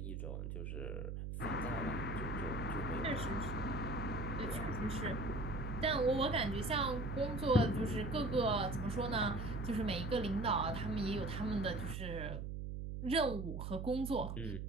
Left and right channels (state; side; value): noise; right; hum, 5 dB below the sound